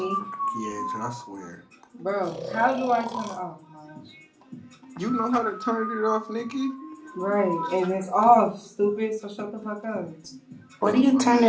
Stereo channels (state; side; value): identical; both; correlation 1.00